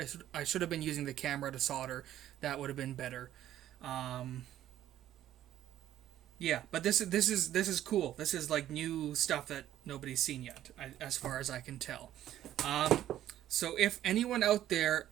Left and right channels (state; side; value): quieter; left; 12.3 dB